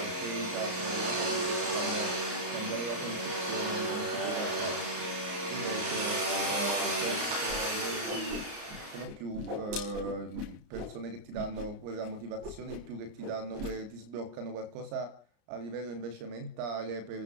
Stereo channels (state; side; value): late; left; 34 ms